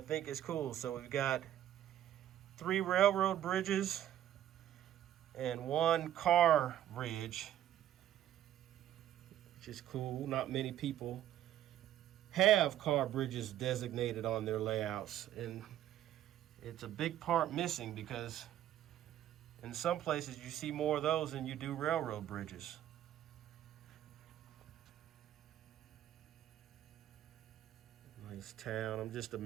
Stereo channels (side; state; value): left; quieter; 11.8 dB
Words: is cool. So we've got 3 railroad bridges and 1 car bridge, which is cool. Not many people have car bridges designated on their layouts, and it's a big part missing because in some places you see more of those than you do railroad bridges. Nice town. I'm just